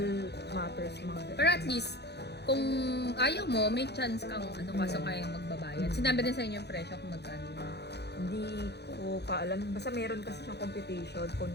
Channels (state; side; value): late; right; 0.48 ms